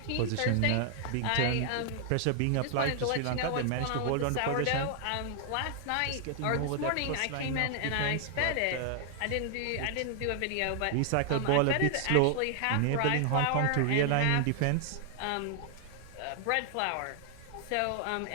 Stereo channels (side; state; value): both; different; correlation 0.00